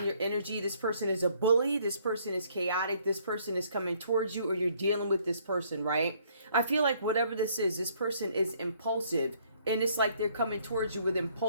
your energy. This person is a bully. This person is chaotic. This person is coming towards you, or you're dealing with this person, right? I feel like whatever this person is impulsive, and it's like they're coming towards you with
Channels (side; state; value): both; inverted; correlation -0.64